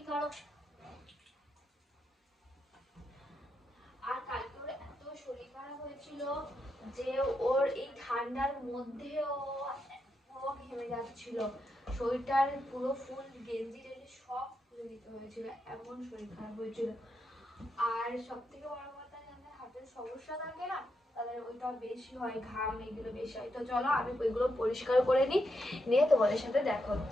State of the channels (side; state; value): both; normal; correlation 0.83